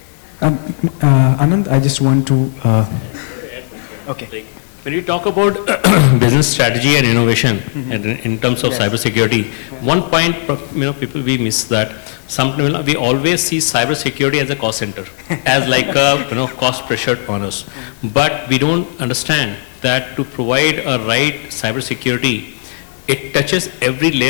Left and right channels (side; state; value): right; silent; digital silence